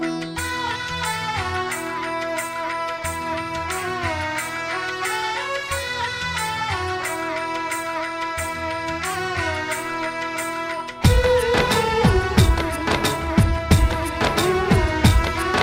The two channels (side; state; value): both; identical; correlation 1.00